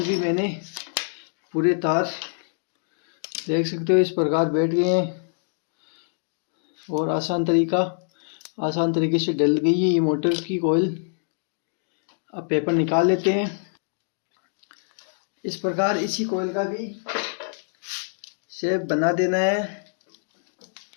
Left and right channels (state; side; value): silent; right; digital silence